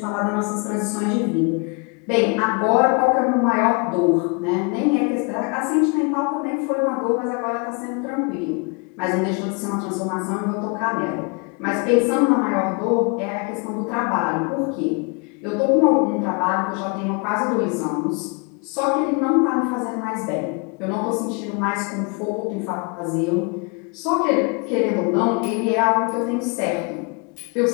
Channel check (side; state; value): right; quieter; 32.3 dB